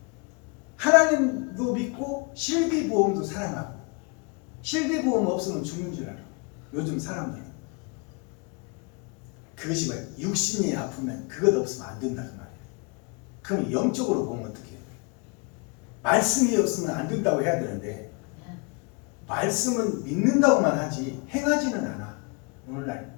하나님도 믿고 실비보험도 사랑하고 실비보험 없으면 죽는 줄 알아. 요즘 사람들은. 그것이 뭐야? 육신이 아프면 그것 없으면 안 된다는 말이에요. 그럼 영적으로 보면 어떻게 해요? 말씀이 없으면 안 된다고 해야 되는데 말씀은 믿는다고만 하지 행하지는 않아. 오늘날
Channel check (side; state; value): right; quieter; 32.2 dB